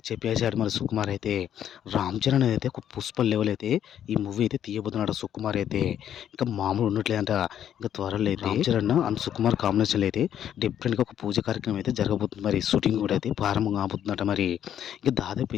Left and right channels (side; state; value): right; quieter; 10.0 dB